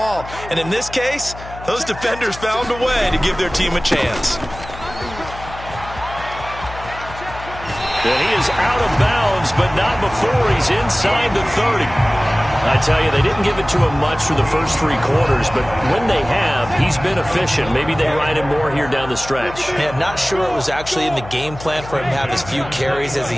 And in this case, those defenders found a way to give their team a chance. And he is out of bounds, but not before he's inside the 30. I tell you, they didn't give it to him much for the first 3 quarters, but when they have, he's been efficient. Maybe they ride him more here down the stretch. Yeah, not sure it was actually in the game plan for him to have as few carries as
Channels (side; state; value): left; noise; hum, 14 dB below the sound